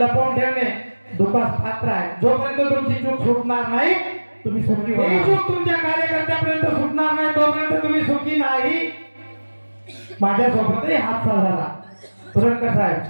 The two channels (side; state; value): both; inverted; correlation -1.00